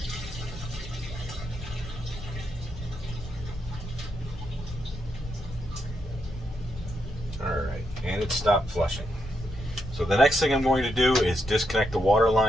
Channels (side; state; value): left; noise; rumble, 12 dB below the sound